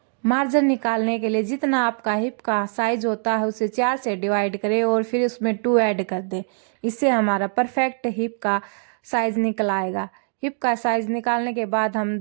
मार्जिन निकालने के लिए जितना आपका हिप का साइज होता है उसे 4 से डिवाइड करें और फिर उसमें 2 ऐड कर दें। इससे हमारा परफेक्ट हिप का साइज निकल आएगा। हिप का साइज निकालने के बाद हम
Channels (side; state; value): left; silent; 55 dB below the other